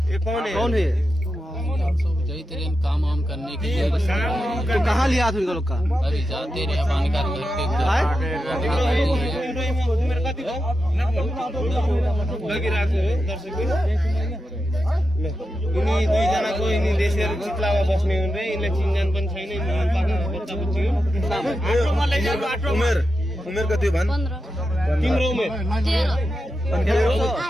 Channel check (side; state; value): both; normal; correlation 0.89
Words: कौन है? कौन है? काम वाम करने के लिए तो कहाँ लिया था लोग का? अभी जाते रहे पानी का यिनी दुईजनाको यिनी देशहरू चितलावा बस्ने हुन् रे यिनले चिनजान पनि छैन बच्चा बच्ची उमेर उमेर कति भन्? तिम्रो उमेर